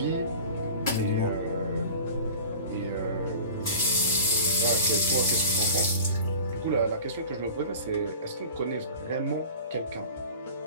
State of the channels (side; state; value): both; inverted; correlation -0.39